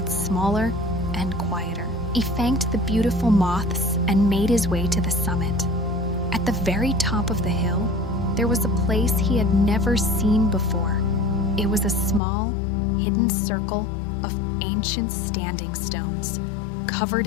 smaller and quieter. He thanked the beautiful moths and made his way to the summit. At the very top of the hill, there was a place he had never seen before. It was a small, hidden circle of ancient standing stones, covered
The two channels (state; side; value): drops out; right; at 12.2 s